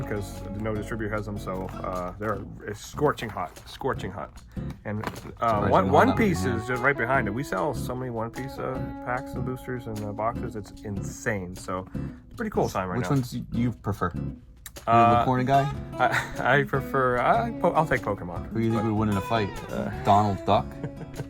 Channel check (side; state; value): both; identical; correlation 1.00